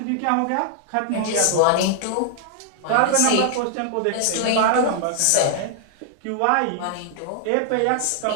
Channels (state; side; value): different; both; correlation -0.01